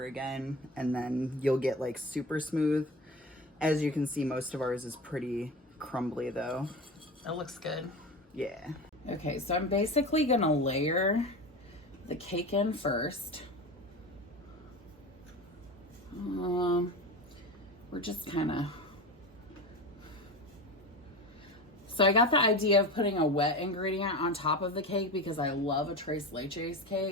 again, and then you'll get like super smooth. As you can see, most of ours is pretty crumbly though. That looks good. Yeah. Okay, so I'm basically gonna layer the cake in first. We're just kind of... So I got the idea of putting a wet ingredient on top of the cake because I love a tres leches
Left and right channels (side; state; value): both; normal; correlation 0.28